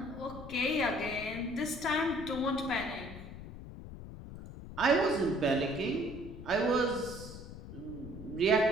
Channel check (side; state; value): left; noise; rumble, 12 dB below the sound